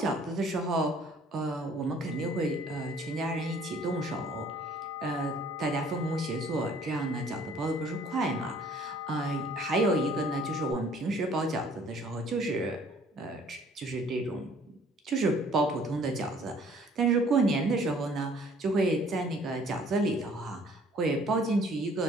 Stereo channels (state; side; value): normal; both; correlation 0.56